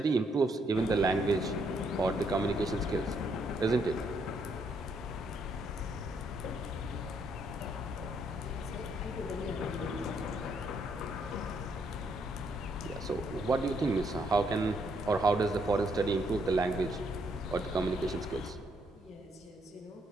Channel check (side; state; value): both; normal; correlation 0.73